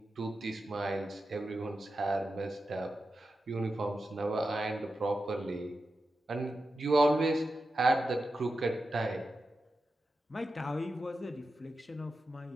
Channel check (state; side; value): normal; both; correlation 0.90